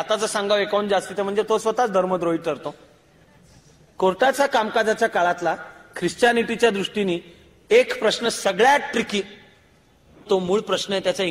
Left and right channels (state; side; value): identical; both; correlation 1.00